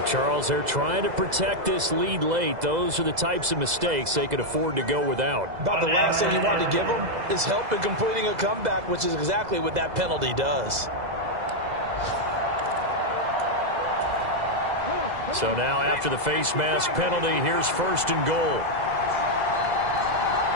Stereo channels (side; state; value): left; late; 2.0 ms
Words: Charles, they're trying to protect this lead late. Those are the types of mistakes they could afford to go without. About the last thing you want to give them is help in completing a comeback, which is exactly what that penalty does. So now after the face mask penalty, here's 1st and goal.